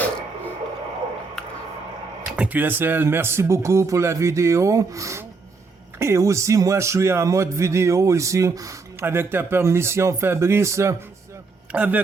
QSL, merci beaucoup pour la vidéo. Et aussi, moi, je suis en mode vidéo ici, avec ta permission, Fabrice,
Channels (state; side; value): quieter; left; 4.2 dB